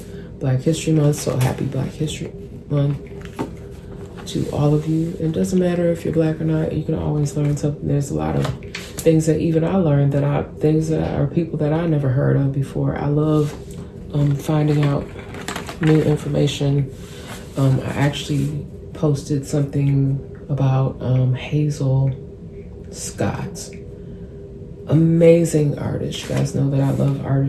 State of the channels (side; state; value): both; identical; correlation 1.00